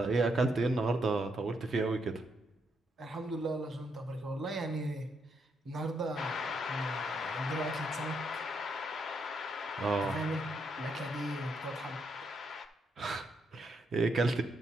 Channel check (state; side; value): normal; both; correlation 0.78